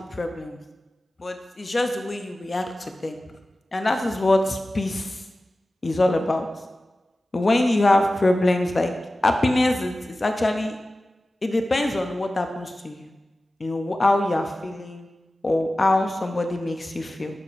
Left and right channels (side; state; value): both; normal; correlation 0.96